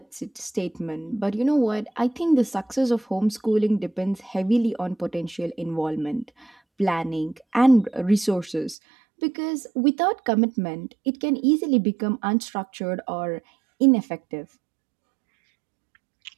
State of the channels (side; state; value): left; drops out; at 8.8 s